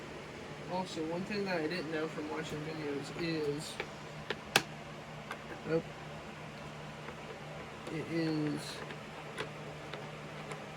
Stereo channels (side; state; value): both; identical; correlation 1.00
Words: Also, one thing that I didn't know from watching videos is,